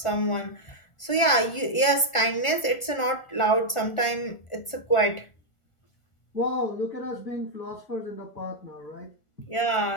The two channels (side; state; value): right; late; 1.4 ms